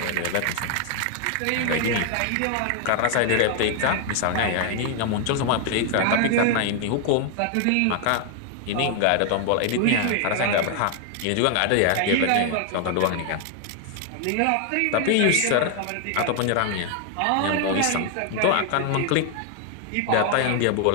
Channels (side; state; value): both; different; correlation 0.00